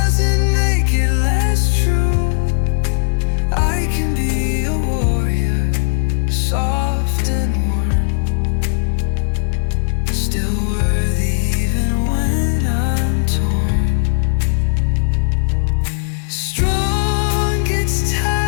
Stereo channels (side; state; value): right; silent; digital silence